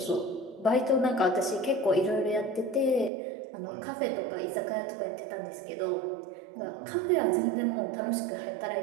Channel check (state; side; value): drops out; left; at 3.1 s